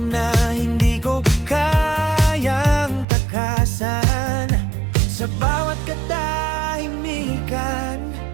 na hindi ko kayang takasan. Sa bawat katahimikan,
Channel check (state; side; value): drops out; left; at 3.1 s